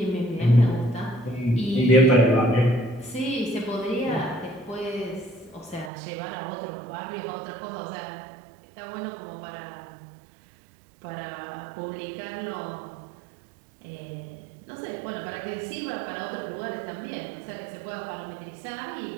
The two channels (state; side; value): drops out; left; at 5.9 s